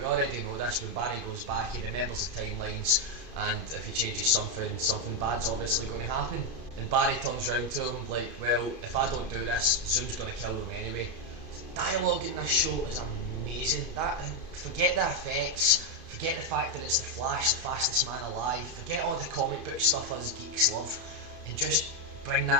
already know this. When Barry goes back, he remembers the timelines, and if he changes something bad's obviously going to happen. And Barry turns round to him like, well, if I don't do this, Zoom's going to kill them anyway. The dialogue in this show is amazing. Forget the effects, forget the fact that it's the Flash, the fastest man alive, forget all the comic book stuff us geeks love, and just bring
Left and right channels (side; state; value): right; late; 2.5 ms